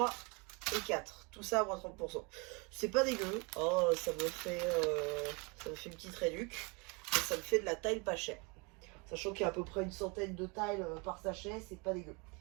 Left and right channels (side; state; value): left; quieter; 29.6 dB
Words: et 4. Tout ça à moins 30%. C'est pas dégueu, hein, ça me fait une petite réduc. Et ça me fait de la taille pas chère. Sachant qu'il y a à peu près une centaine de tiles par sachet, c'est pas dégueu.